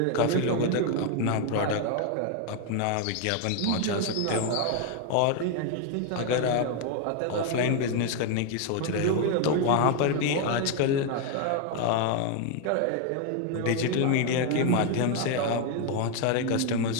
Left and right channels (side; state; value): both; different; correlation 0.01